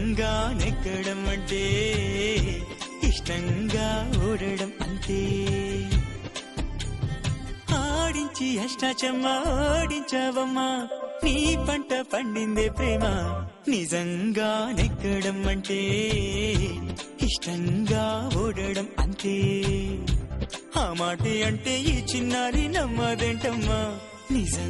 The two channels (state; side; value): identical; both; correlation 1.00